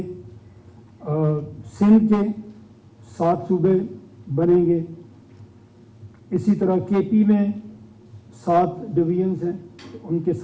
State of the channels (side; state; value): both; identical; correlation 1.00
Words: سندھ کے 7 صوبے بنیں گے, اسی طرح کے پی میں 7 ڈویژنس ہیں ان کے